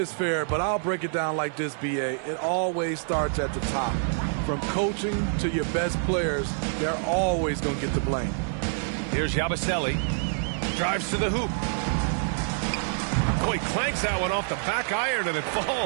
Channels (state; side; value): silent; left; digital silence